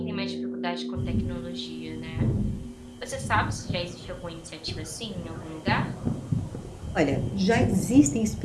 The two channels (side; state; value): both; identical; correlation 1.00